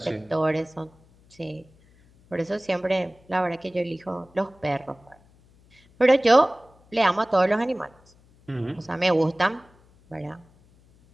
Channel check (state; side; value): noise; left; hum, 30 dB below the sound